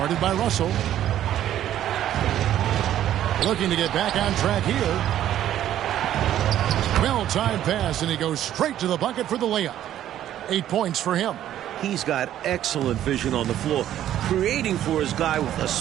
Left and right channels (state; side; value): quieter; left; 11.8 dB